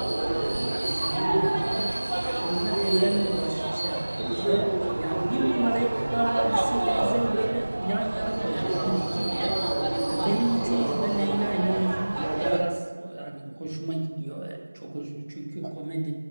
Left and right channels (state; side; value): inverted; both; correlation -1.00